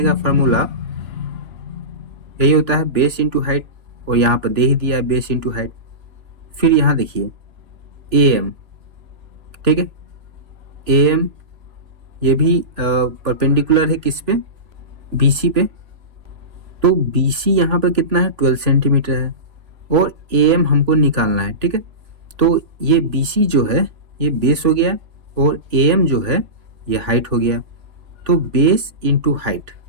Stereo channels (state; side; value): late; left; 3.0 ms